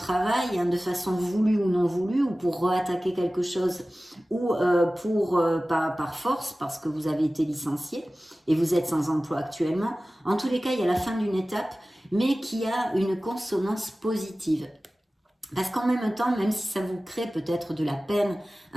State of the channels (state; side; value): normal; both; correlation 0.97